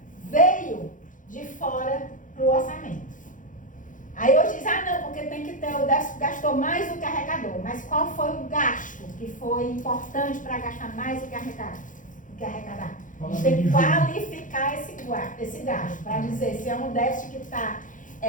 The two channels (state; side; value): late; right; 0.38 ms